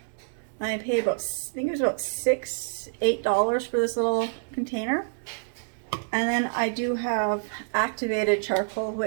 I paid about, I think it was about $8 for this little container. And then I do have activated charcoal,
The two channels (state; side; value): silent; left; digital silence